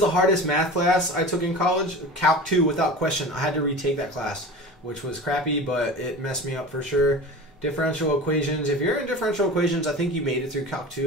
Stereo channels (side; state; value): both; normal; correlation 0.34